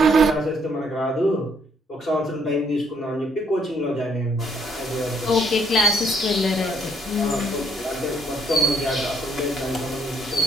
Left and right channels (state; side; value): normal; both; correlation 0.67